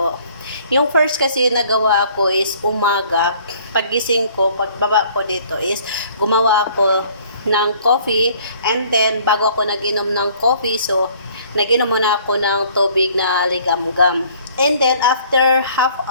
Yung first kasi nagawa ko is umaga, pagising ko, pagbaba ko dito is gumawa ako ng coffee and then bago ako nag-inom ng coffee, so nag-inom muna ako ng tubig na ligamgam. And then after half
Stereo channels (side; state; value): both; inverted; correlation -0.57